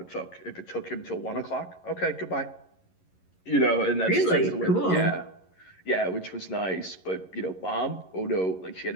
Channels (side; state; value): right; late; 11 ms